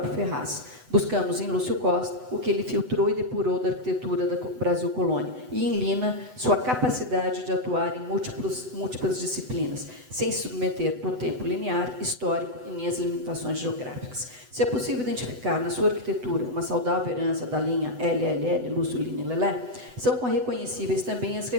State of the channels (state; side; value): late; left; 8.0 ms